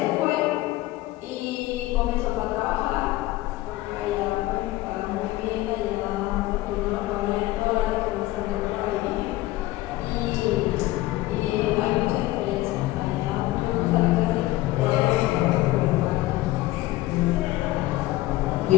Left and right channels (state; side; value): quieter; right; 17.5 dB